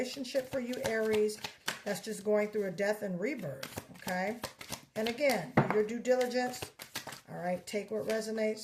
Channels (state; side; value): identical; both; correlation 1.00